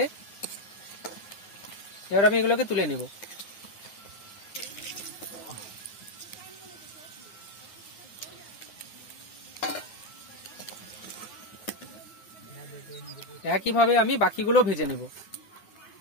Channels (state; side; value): late; right; 10 ms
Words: এবার আমি এগুলোকে তুলে নেব। একইভাবে আমি বাকিগুলো ভেজে নেব।